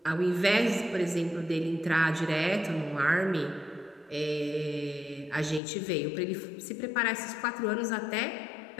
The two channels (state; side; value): drops out; right; at 5.6 s